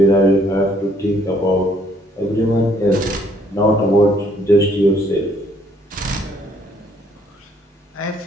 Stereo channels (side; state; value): both; normal; correlation 0.65